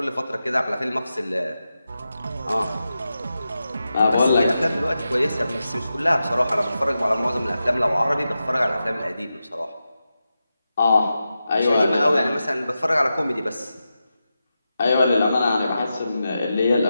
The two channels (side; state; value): both; inverted; correlation -0.91